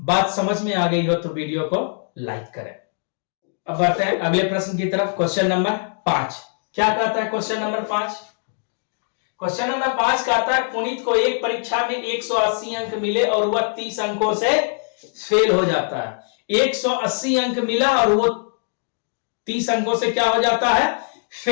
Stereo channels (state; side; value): silent; right; digital silence